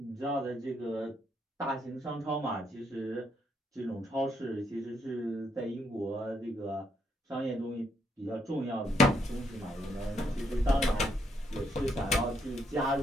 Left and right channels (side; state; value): both; normal; correlation 0.75